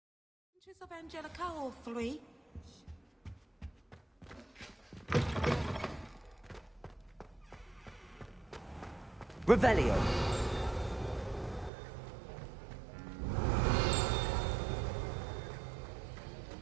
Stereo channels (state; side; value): drops out; left; at 11.7 s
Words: Of Angelica, all three. Revelio.